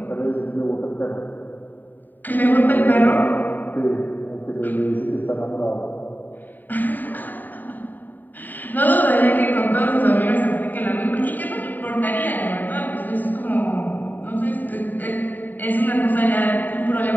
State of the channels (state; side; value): late; right; 0.089 ms